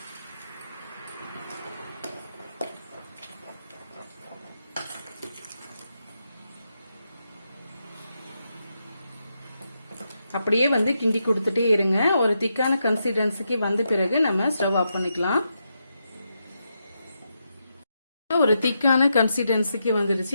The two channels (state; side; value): inverted; both; correlation -0.83